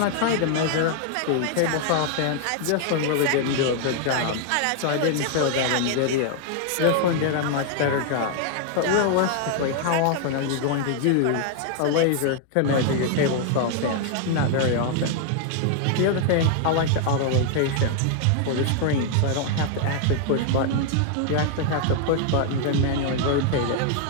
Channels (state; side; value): different; both; correlation 0.00